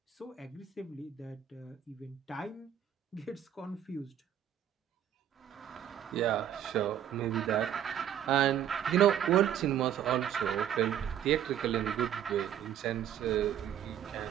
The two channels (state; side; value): quieter; left; 10.2 dB